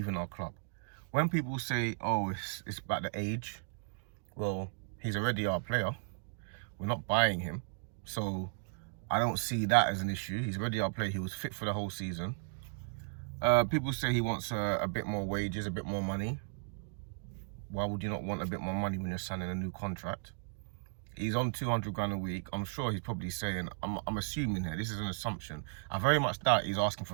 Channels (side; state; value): left; silent; digital silence